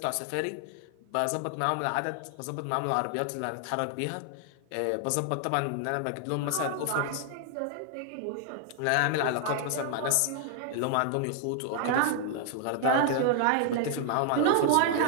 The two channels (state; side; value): different; both; correlation 0.00